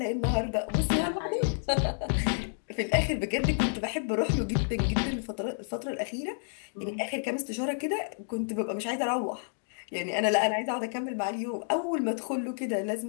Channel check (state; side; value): silent; right; digital silence